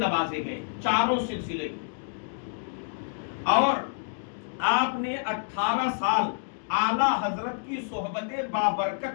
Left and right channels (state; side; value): silent; right; digital silence